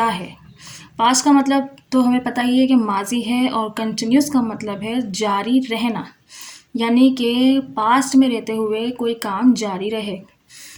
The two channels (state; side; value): identical; both; correlation 1.00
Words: है? पास्ट का मतलब तो हमें पता ही है कि माजी है, और कंटिन्यूस का मतलब है जारी रहना, यानी कि पास्ट में रहते हुए कोई काम जारी रहे।